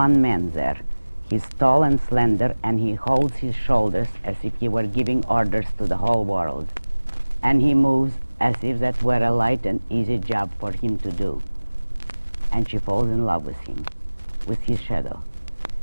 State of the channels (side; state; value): both; inverted; correlation -1.00